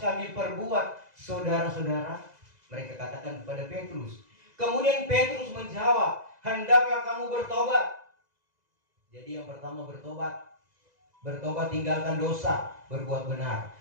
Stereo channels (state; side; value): late; left; 2.0 ms